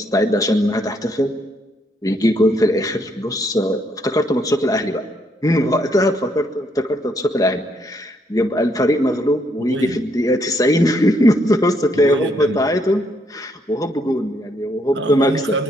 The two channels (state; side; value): normal; both; correlation 0.72